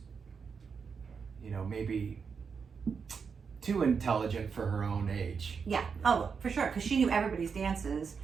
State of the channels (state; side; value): quieter; left; 5.9 dB